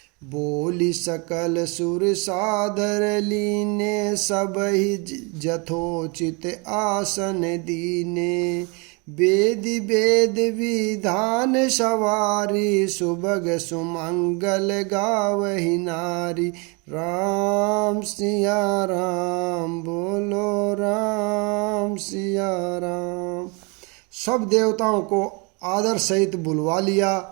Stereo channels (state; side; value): quieter; left; 31.1 dB